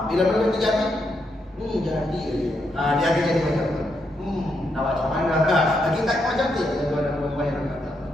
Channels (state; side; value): normal; both; correlation 0.80